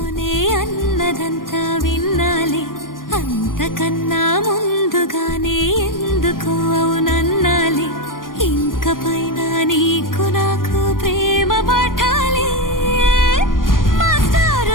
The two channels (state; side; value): late; right; 0.90 ms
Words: అన్నదంతా విన్నాలే అంతకన్నా ముందుగానే ఎందుకు అవునన్నాలే ఇంక పైన నీకు నాకు ప్రేమ పాఠాలే